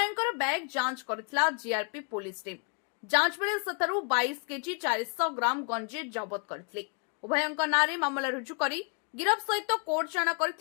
बैग जांच करथिला जीआरपी पुलिस टीम। जांच बेले सतरु 22 केजी 400 ग्राम गंजी जबत करथिले। उभयंकर नारे मामला रुजु करी गिरफ सहित कोर्ट चाणा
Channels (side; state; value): right; quieter; 37.2 dB